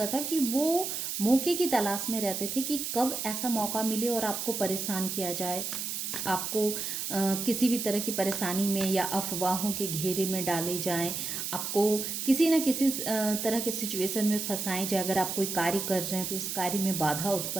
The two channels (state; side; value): noise; right; hiss, 3 dB below the sound